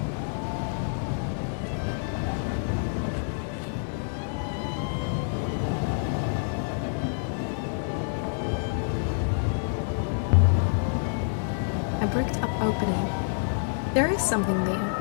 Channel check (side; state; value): right; silent; 60 dB below the other